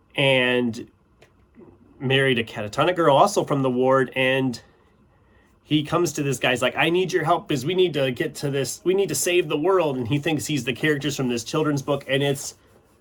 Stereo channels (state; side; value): identical; both; correlation 1.00